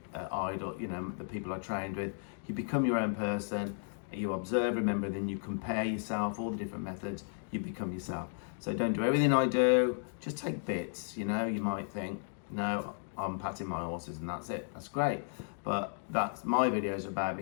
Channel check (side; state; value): right; silent; digital silence